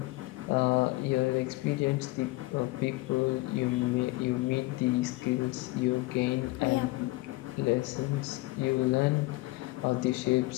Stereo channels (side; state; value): right; quieter; 21.2 dB